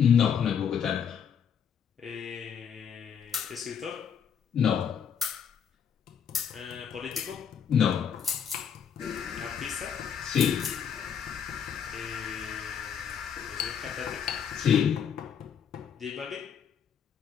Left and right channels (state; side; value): quieter; right; 7.7 dB